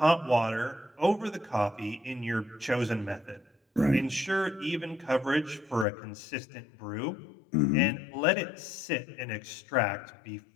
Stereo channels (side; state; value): right; drops out; at 5.9 s